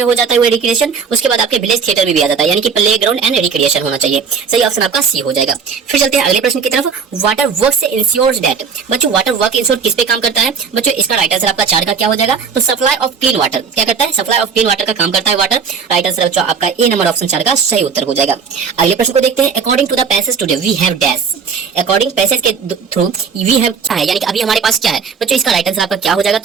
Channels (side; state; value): left; quieter; 6.1 dB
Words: हो जाता है वो रिक्रिएशन, उसके बाद आपके विलेज थिएटर में भी आ जाता है, यानी कि प्लेग्राउंड एंड रिक्रिएशन होना चाहिए। सही ऑप्शन आपका सी हो जाएगा। फिर चलते हैं अगले प्रश्न की तरफ। Water works ensures that. बच्चों वाटर वर्क इंश्योर किस पे काम करता है। बच्चों इसका राइट आंसर आपका 4 का क्या हो जाएगा, तो सप्लाई ऑफ क्लीन वाटर। क्या करता है, सप्लाई ऑफ क्लीन वाटर का काम करता है वाटर। राइट आंसर बच्चों आपका ए नंबर ऑप्शन 4 का सही उत्तर हो जाएगा। अगले प्रश्न को देखते हैं। According to the passage today we have dash. According passage के थ्रू वी हैव क्या है, यानी कि अभी हमारे पास क्या है। बच्चों इसका राइट आंसर आपका क्या हो जाएगा,